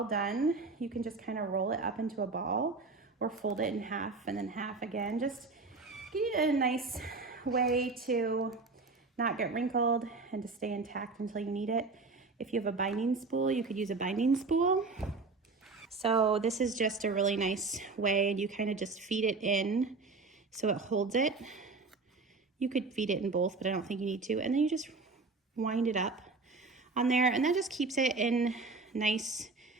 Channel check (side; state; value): left; quieter; 4.0 dB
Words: done, you can just kind of roll it up into a ball or fold it in half and then half again. Just give it a nice way to not get wrinkled and to stay intact until you need it. If you have a binding spool, you could use a binding spool. So this is just a really nice way, and you kind of just feed it in so it holds it. You could feed it in both, but I don't think you need to. And then you just wind it up on there, and that just keeps it in nice